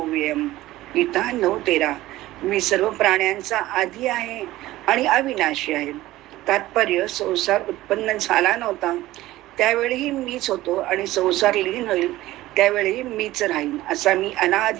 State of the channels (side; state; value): left; quieter; 16.5 dB